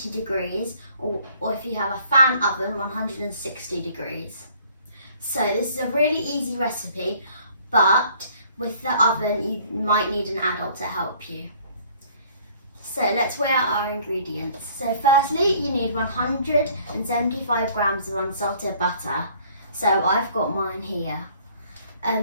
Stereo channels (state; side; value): inverted; both; correlation -0.57